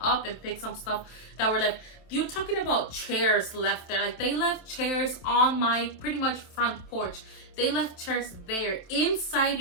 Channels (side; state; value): right; late; 27 ms